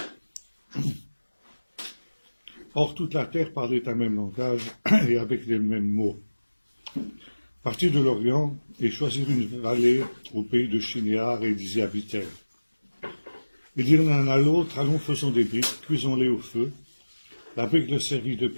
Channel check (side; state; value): both; inverted; correlation -1.00